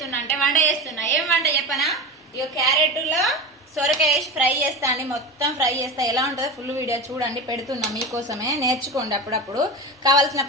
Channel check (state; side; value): normal; both; correlation 0.25